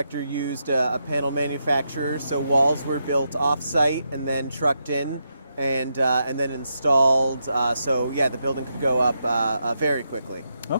used a panel manufacturer, so walls were built off-site and then trucked in and then installed. So yeah, the building could go up very quickly.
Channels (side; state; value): both; inverted; correlation -0.83